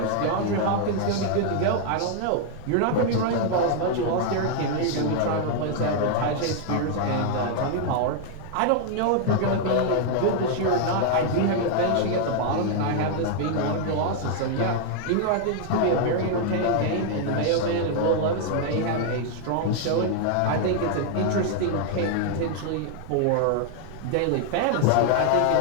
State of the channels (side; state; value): both; different; correlation 0.00